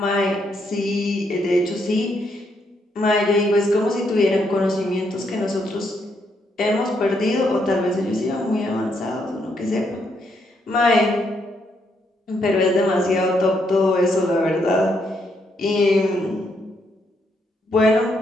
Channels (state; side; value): normal; both; correlation 0.76